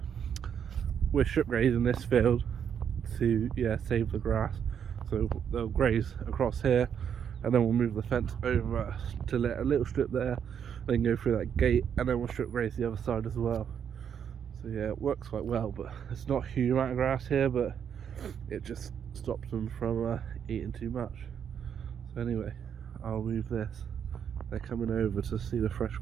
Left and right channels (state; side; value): quieter; left; 8.2 dB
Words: strip grazing this field to save the grass. So they'll graze across here, and then we'll move the fence over to let a little strip there, then go through that gate, and then we'll strip graze the other side as well. So yeah, it works quite well, but it's not a huge amount of grass here, but it just stops them from eating too much. So anyway, I'll move this. They're coming over to see the fresh